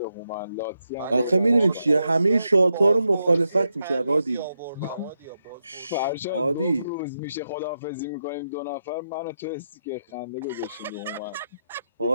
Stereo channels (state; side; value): inverted; both; correlation -0.84